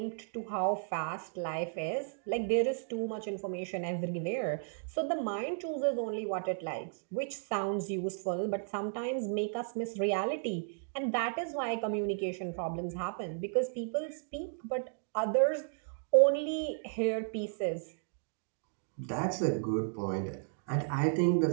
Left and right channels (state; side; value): silent; left; digital silence